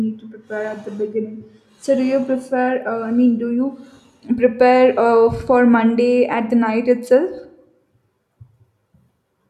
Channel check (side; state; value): both; identical; correlation 1.00